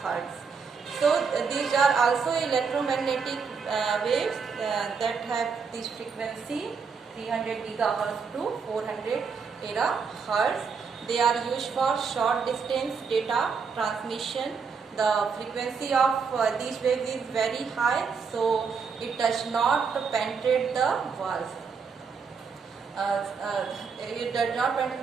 So these are also electromagnetic waves that have this frequency 300 GHz to 400 terahertz. They are used for short distance data transmission the frequency of these waves is very high, so it does not penetrate the walls. It does not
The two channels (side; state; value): left; quieter; 5.7 dB